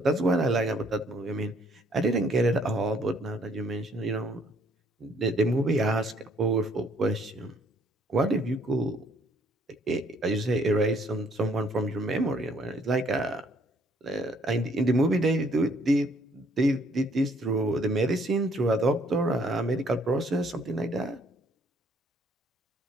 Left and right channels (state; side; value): normal; both; correlation 0.64